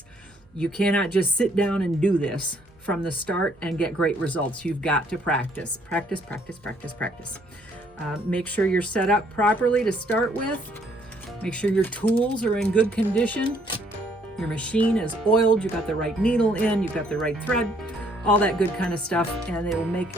You cannot just sit down and do this from the start and get great results. You've got to practice. Practice, practice, practice, practice. Make sure you're set up properly to start with. Make sure your tools are in good condition. Your machine is oiled, you've got the right needle in, you've got the right thread, all that good kind of stuff, and it will make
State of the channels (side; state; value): right; noise; hum, 30 dB below the sound